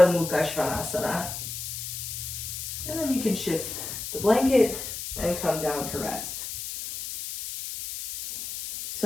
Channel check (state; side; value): noise; left; hiss, 7 dB below the sound